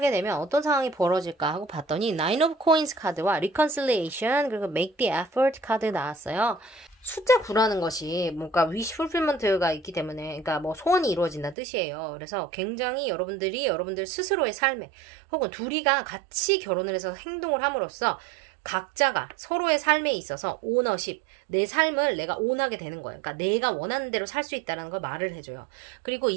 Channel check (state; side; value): drops out; left; at 11.6 s